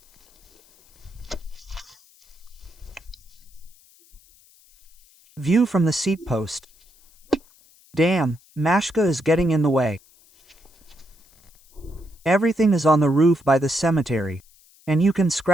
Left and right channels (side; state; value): left; noise; hiss, 29 dB below the sound